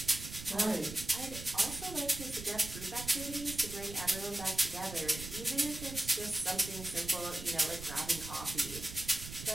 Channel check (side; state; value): right; noise; rumble, 11 dB below the sound